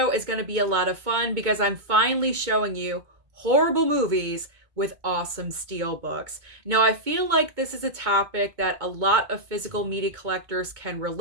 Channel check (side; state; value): left; late; 2.2 ms